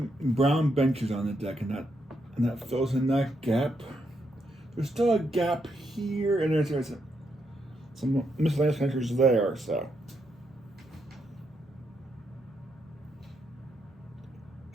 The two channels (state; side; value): normal; both; correlation 0.79